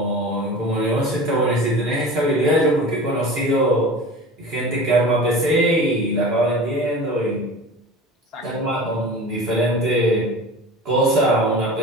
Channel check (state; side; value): normal; both; correlation 0.36